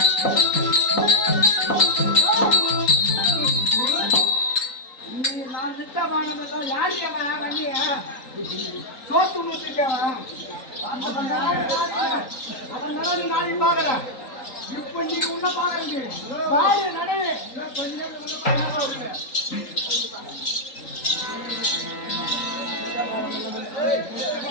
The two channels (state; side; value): late; right; 3.8 ms